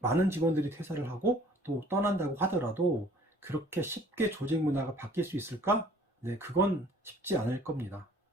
직원들이 퇴사를 하고 또 떠난다고 하더라도 그렇게 쉽게 조직 문화가 바뀔 수 있을까? 네, 그건 쉽지 않을 겁니다.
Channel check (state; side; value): normal; both; correlation 0.54